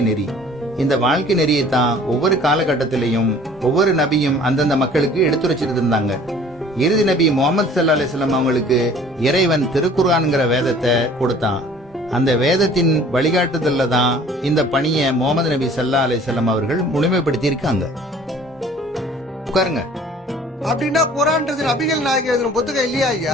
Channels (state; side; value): normal; both; correlation 0.51